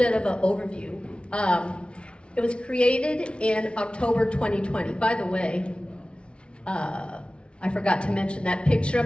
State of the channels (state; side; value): late; right; 0.058 ms